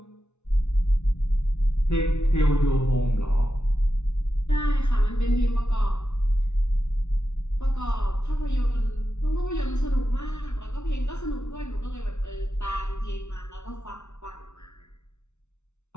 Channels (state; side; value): late; right; 0.82 ms